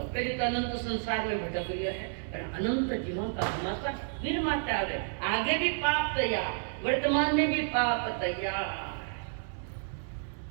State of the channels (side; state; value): left; silent; 57 dB below the other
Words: पहले तो अनंत संसार में भटक गया है और अनंत जीवन का हमारा वीर माता है। आगे भी पाप तैयार, वर्तमान में भी पाप तैयार,